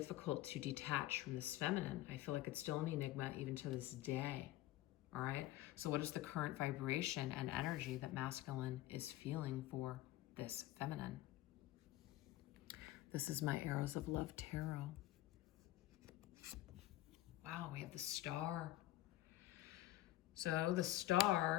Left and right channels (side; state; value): right; quieter; 15.5 dB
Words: to detach from this feminine. I feel like it's still an enigma even to this day, all right? So what is the current vibration and energy that masculine is feeling for this feminine? This is my Arrows of Love Tarot. Wow, we have the Star. So the